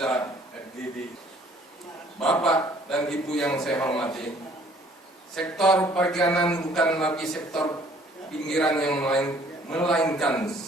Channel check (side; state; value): both; normal; correlation 0.58